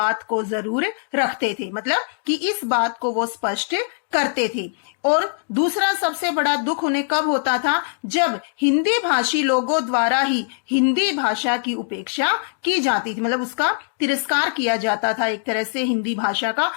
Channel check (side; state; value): right; silent; digital silence